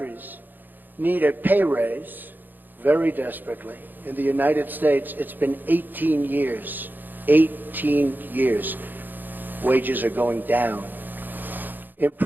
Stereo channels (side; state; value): left; late; 0.089 ms